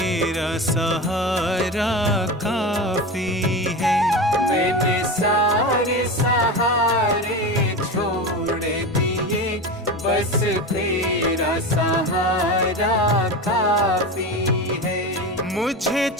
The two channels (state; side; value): normal; both; correlation 0.24